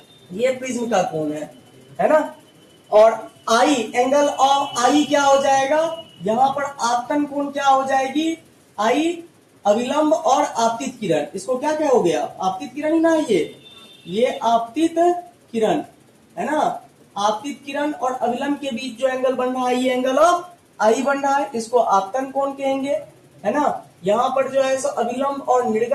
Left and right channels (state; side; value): identical; both; correlation 1.00